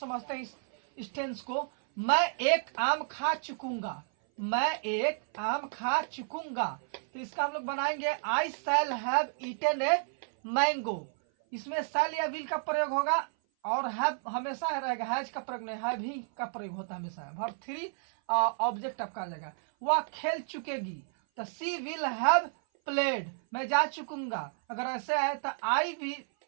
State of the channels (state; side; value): silent; left; 56 dB below the other